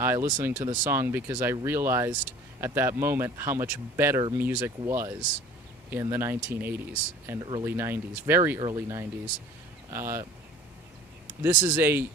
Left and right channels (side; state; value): both; normal; correlation 0.46